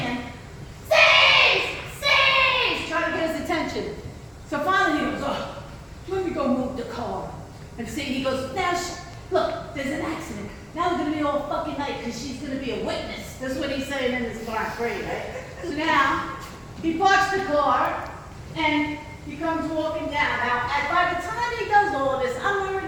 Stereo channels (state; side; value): identical; both; correlation 1.00